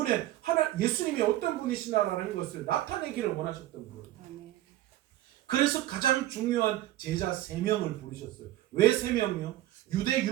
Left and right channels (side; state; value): left; quieter; 14.7 dB